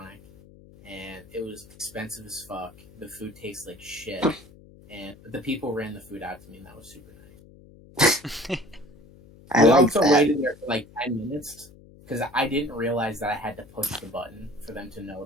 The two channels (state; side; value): noise; left; hum, 23 dB below the sound